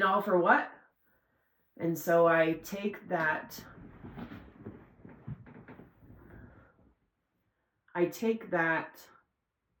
all for what? And so I take that I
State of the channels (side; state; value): both; identical; correlation 1.00